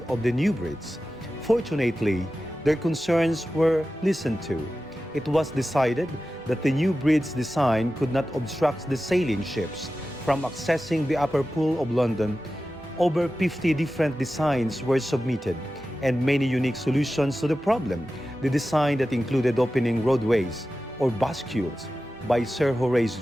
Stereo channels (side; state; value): both; normal; correlation 0.94